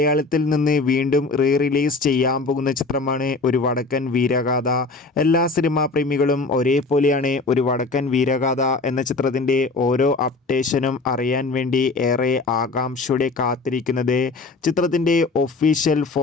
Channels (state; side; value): quieter; right; 3.7 dB